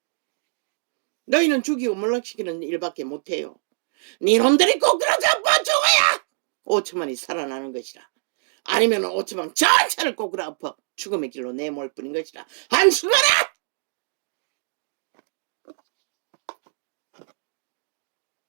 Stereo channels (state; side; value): silent; left; 57 dB below the other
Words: 너희는 죽이고 몰락시키는 일밖에 못해요. 니놈들이 꼭 그러자 죽어야 5천만이 살아나는 것이라. 아니면 5천만 전체를 꼬꾸라 엎어 죽음의 길로 내몰 뿐인 것이라. 한숨하라.